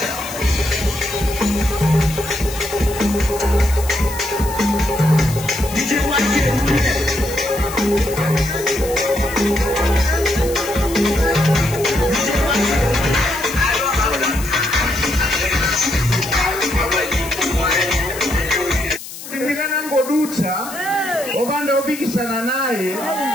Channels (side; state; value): left; noise; hiss, 12 dB below the sound